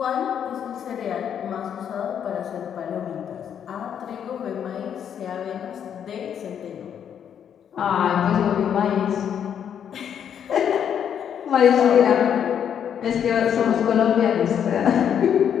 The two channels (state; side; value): quieter; right; 8.6 dB